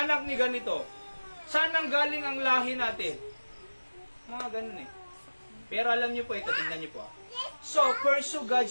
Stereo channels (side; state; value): both; inverted; correlation -1.00